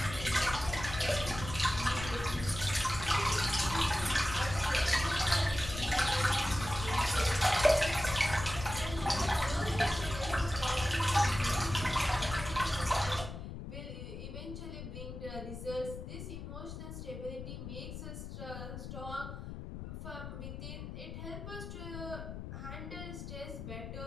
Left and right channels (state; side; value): noise; left; rumble, 9 dB below the sound